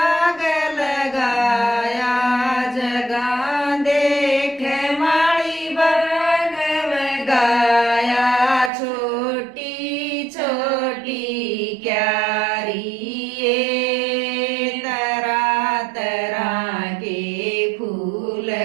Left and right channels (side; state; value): left; drops out; at 8.7 s